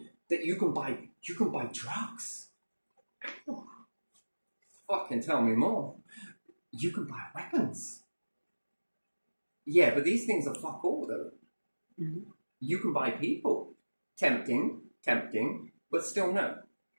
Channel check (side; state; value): both; inverted; correlation -1.00